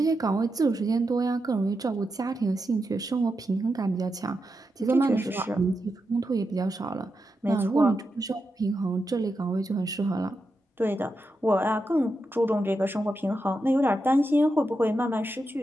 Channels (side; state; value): both; normal; correlation 0.87